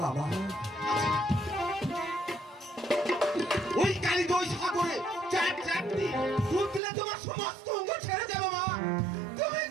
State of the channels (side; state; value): left; drops out; at 6.8 s